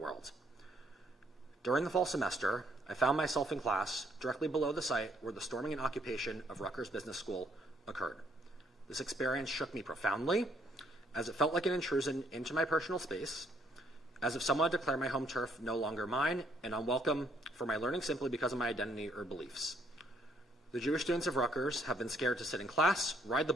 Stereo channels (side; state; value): both; normal; correlation 0.69